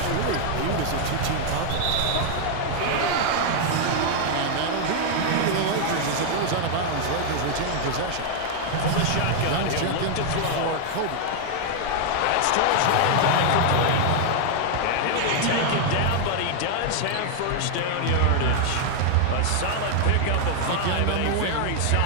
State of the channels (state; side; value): different; both; correlation 0.00